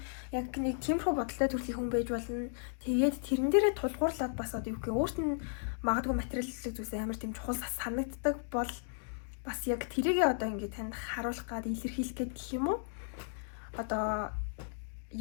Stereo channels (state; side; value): silent; right; digital silence